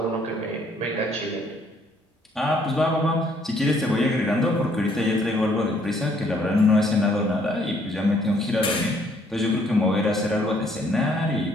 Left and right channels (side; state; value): both; normal; correlation 0.65